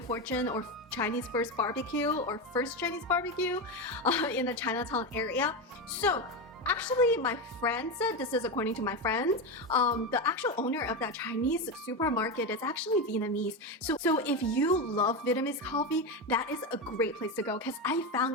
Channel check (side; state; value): both; normal; correlation 0.15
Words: or Chinese first barbecue or first Chinese barbecue in the ChinaTown area. So Actually, my friend said, this is according to my friend, the actual owner of that Chinese supermarket is actually Vietnamese. So if you love Vietnamese coffee, that is a great place to go because I